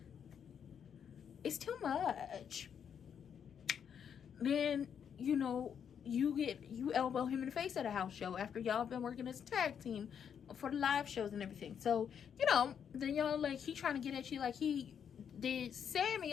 It's too much. Then, you know, you elbow him in the face at a house show after y'all been working as a tag team for the live shows and everything. So, you know, then y'all like, he trying to get at you like he did Sammy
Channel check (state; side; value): quieter; right; 7.9 dB